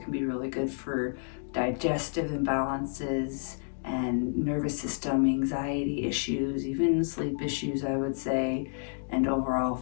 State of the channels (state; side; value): silent; right; digital silence